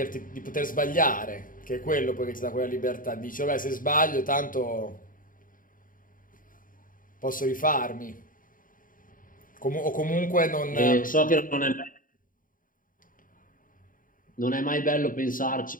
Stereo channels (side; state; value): right; late; 0.40 ms